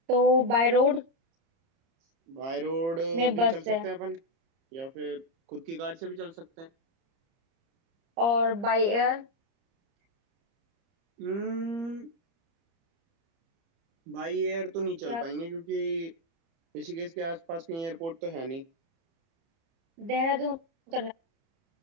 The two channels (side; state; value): left; late; 30 ms